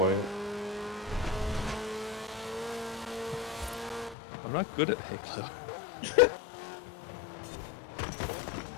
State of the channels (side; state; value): right; drops out; at 4.2 s